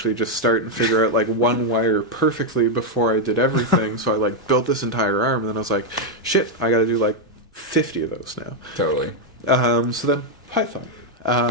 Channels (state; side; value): normal; both; correlation 0.01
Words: just start and figure out like one wire perfectly before I did everything. So I like built this entire arm and then I was like, shit, I gotta do like 50 of those now. Totally. So then Python.